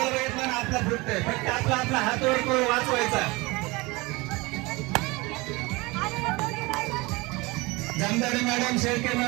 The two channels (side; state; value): left; quieter; 23.8 dB